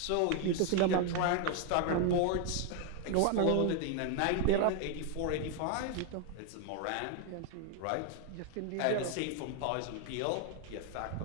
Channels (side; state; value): both; different; correlation 0.00